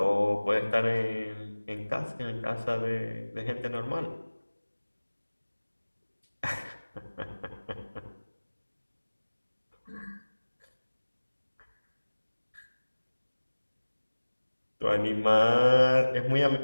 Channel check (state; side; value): inverted; both; correlation -1.00